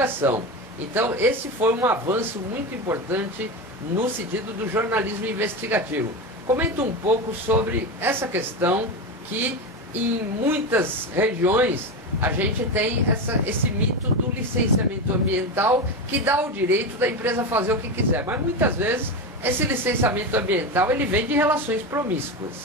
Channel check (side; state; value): both; normal; correlation 0.19